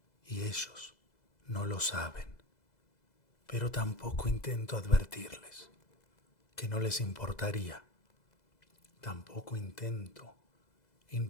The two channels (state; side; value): late; right; 2.0 ms